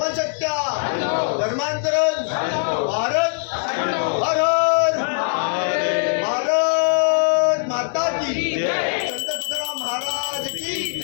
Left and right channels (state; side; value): silent; right; digital silence